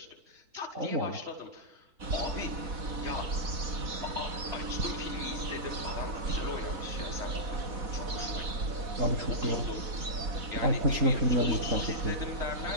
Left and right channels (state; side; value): late; left; 4.1 ms